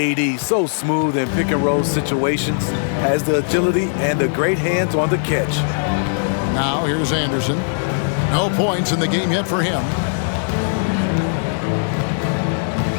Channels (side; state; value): right; silent; digital silence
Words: so smooth in pick and roll situations, has the agility and the great hands on the catch. Now here's Anderson. No points in the game yet for him.